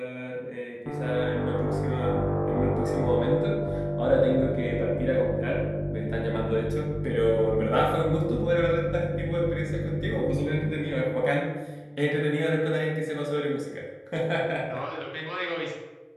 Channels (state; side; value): identical; both; correlation 1.00